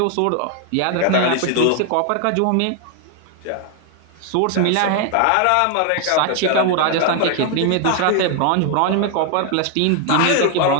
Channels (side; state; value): both; different; correlation 0.00